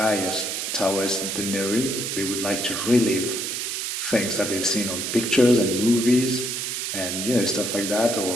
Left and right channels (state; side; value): noise; right; hiss, 3 dB below the sound